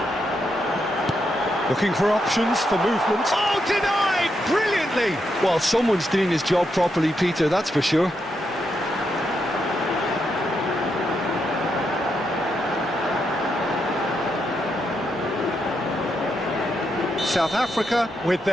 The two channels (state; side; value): normal; both; correlation 0.81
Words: Looking for options for movement. Oh, denied! Brilliantly! Well, someone's doing his job properly, Peter, that's for sure. South Africa with